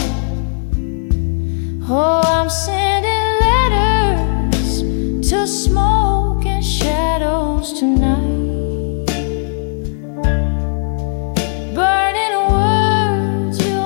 Oh, I'm sending letters to smoke and shadows tonight.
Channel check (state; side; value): silent; right; 67 dB below the other